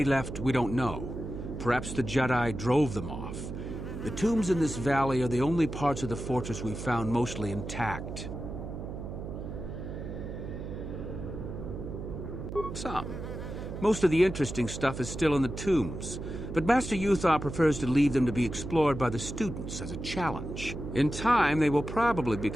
left, we don't know. Perhaps the Jedi drove them off. The tombs in this valley are the only parts of the fortress we found mostly intact. Some. Most of the interesting stuff is still in the tombs, but Master Uthar prefers to leave them to be explored by the students as a challenge. In time, they will probably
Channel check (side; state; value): right; noise; hum, 8 dB below the sound